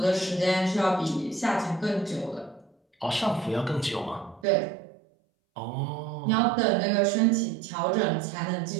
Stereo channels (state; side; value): drops out; left; at 4.5 s